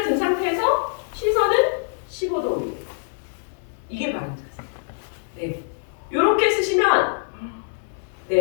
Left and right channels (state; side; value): silent; right; digital silence